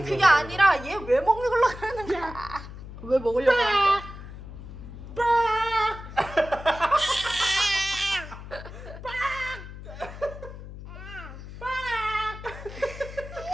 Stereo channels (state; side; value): noise; left; hum, 13 dB below the sound